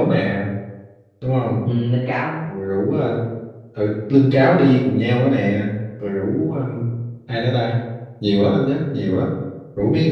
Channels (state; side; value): identical; both; correlation 1.00